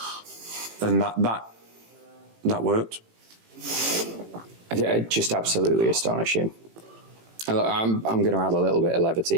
And that worked. Just absolutely astonishing. I'm going to add a little bit of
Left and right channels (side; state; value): left; late; 18 ms